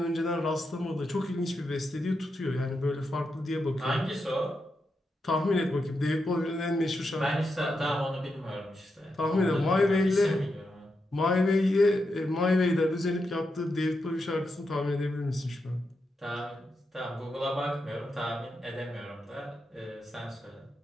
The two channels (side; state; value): both; normal; correlation 0.85